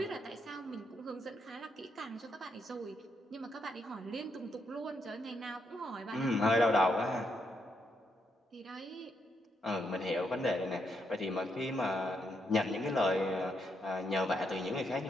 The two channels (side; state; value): both; normal; correlation 0.78